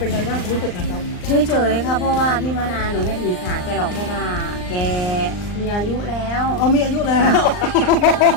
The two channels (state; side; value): late; right; 39 ms